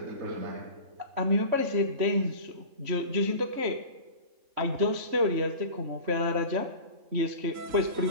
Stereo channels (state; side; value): late; left; 3.1 ms